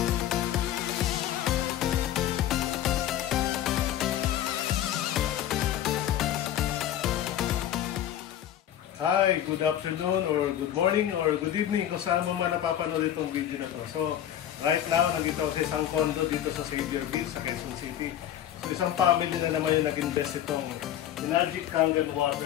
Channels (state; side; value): quieter; right; 11.2 dB